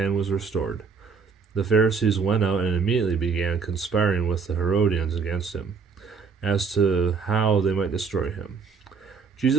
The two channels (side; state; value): left; quieter; 5.4 dB